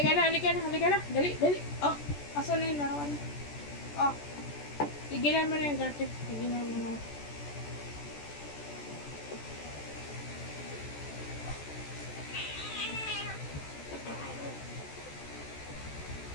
na, halika na, halika na. Dali, dali. Oh, asan na yung larawan? Oh, tigilan mo na yung garter. Tigilan mo na.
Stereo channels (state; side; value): late; right; 14 ms